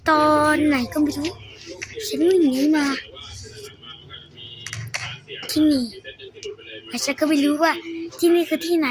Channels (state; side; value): identical; both; correlation 1.00